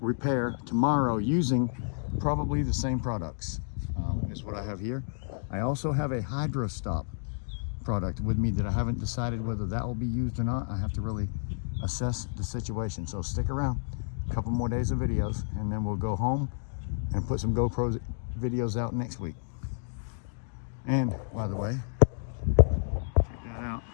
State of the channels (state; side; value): silent; right; digital silence